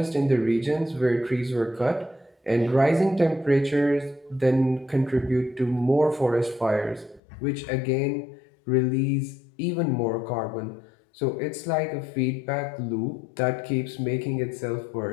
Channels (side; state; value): right; drops out; at 7.2 s